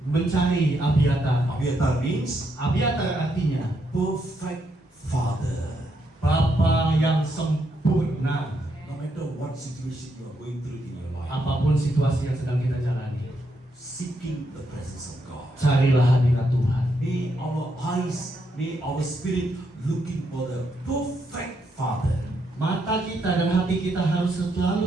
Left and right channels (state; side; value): normal; both; correlation 0.78